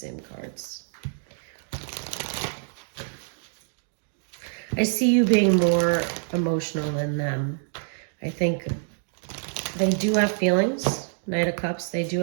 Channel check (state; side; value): silent; left; digital silence